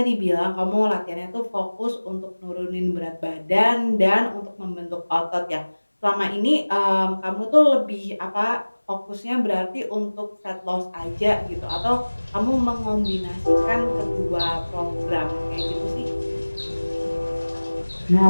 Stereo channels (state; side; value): inverted; both; correlation -1.00